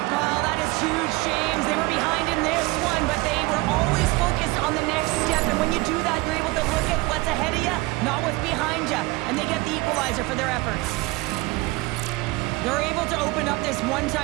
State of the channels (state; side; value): quieter; left; 22.2 dB